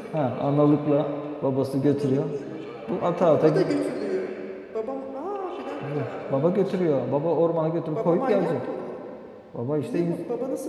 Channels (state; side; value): identical; both; correlation 1.00